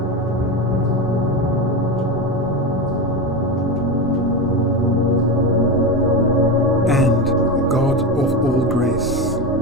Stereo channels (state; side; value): normal; both; correlation 0.18